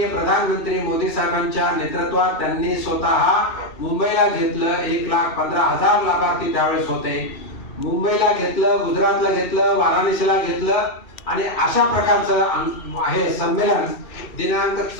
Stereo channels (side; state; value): right; late; 2.6 ms